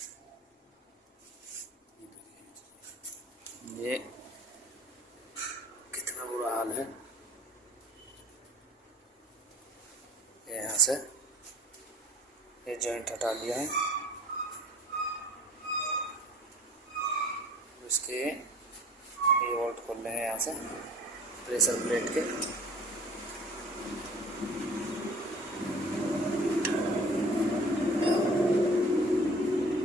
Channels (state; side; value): normal; both; correlation 0.47